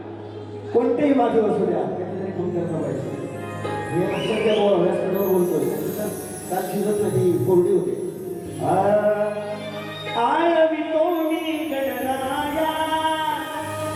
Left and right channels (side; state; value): both; identical; correlation 1.00